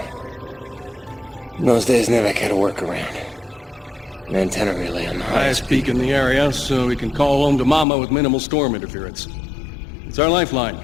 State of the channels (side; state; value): right; drops out; at 7.9 s